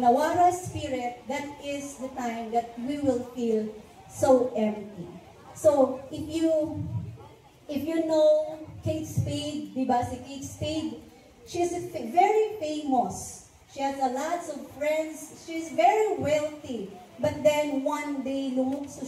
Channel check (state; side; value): identical; both; correlation 1.00